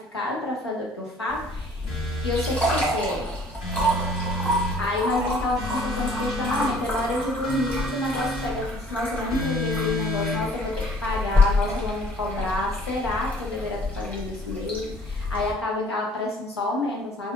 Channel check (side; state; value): both; normal; correlation 0.55